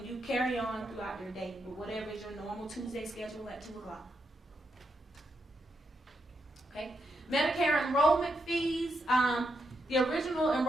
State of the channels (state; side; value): normal; both; correlation 0.82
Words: you carry on throughout your day with whatever is your normal Tuesday schedule at 2 o'clock. Okay. Medicare enrollment fees. The original